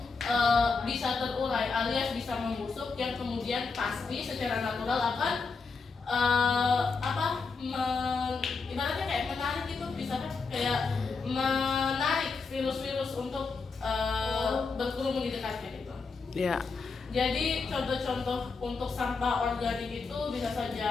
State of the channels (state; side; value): quieter; right; 4.6 dB